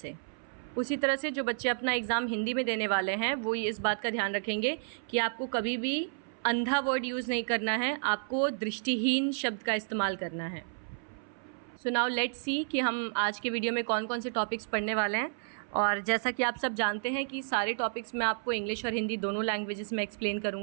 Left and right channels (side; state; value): left; silent; 57 dB below the other